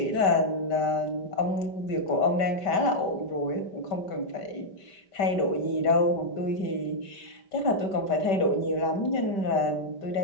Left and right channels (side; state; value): right; late; 5.1 ms